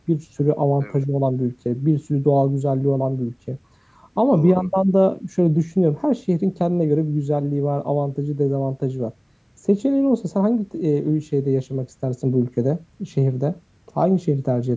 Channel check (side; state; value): both; identical; correlation 1.00